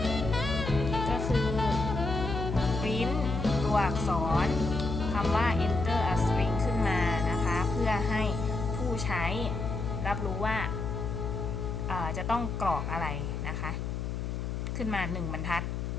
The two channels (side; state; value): left; noise; hum, 3 dB below the sound